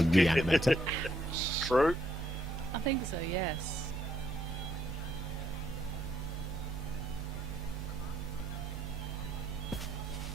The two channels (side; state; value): both; normal; correlation 0.73